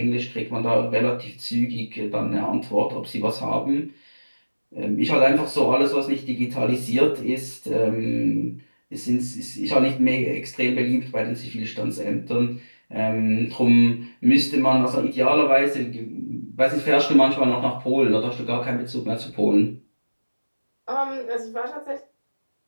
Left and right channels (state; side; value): inverted; both; correlation -1.00